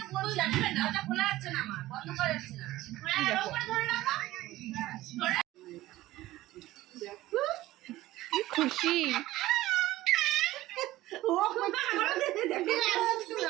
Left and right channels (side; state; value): left; quieter; 16.4 dB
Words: দরজা খোলা যাচ্ছে না আমার, বন্ধ করা যাচ্ছে না। ধরে রাখো। কি খুশি।